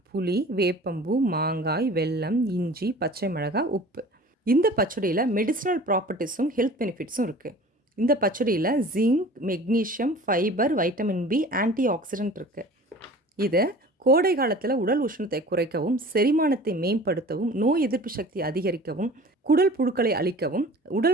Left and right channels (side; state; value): both; normal; correlation 0.43